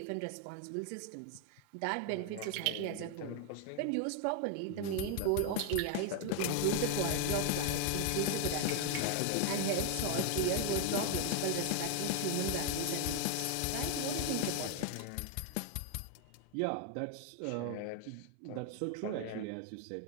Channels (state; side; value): different; both; correlation 0.00